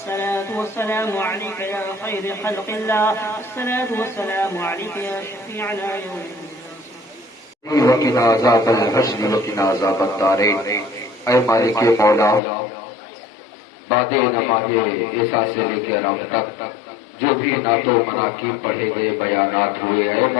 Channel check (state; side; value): drops out; right; at 12.4 s